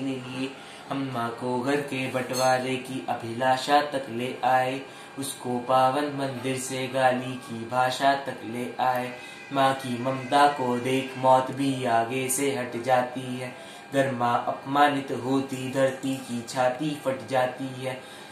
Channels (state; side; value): identical; both; correlation 1.00